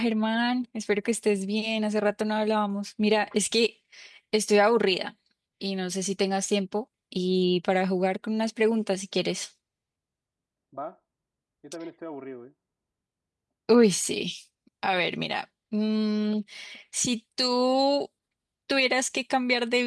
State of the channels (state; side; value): identical; both; correlation 1.00